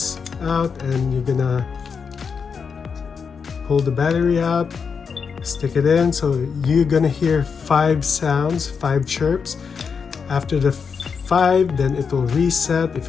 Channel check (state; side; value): quieter; right; 5.9 dB